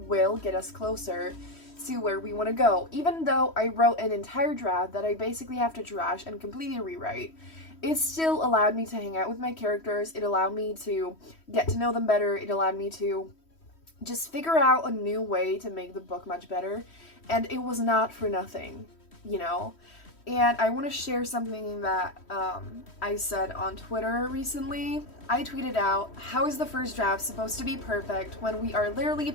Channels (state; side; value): late; right; 3.1 ms